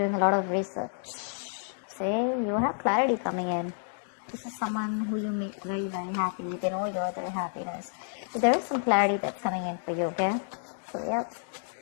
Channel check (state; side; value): silent; right; digital silence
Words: a lot of research. Say, you have clarity coming in. This is someone who you make very, very happy. They know you're their happiness. So there is some clarity that's coming in for you, okay? So, yep.